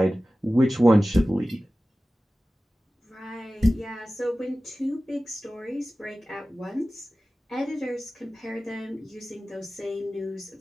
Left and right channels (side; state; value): both; normal; correlation 0.96